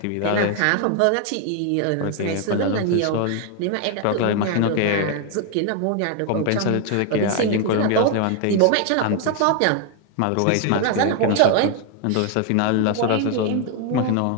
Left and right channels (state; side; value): different; both; correlation 0.01